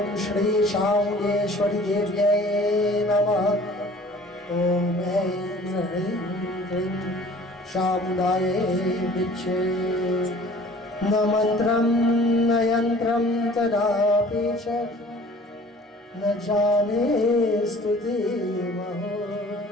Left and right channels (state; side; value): normal; both; correlation 0.49